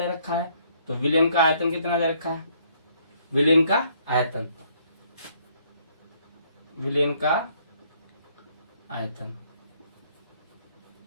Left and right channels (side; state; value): both; inverted; correlation -0.65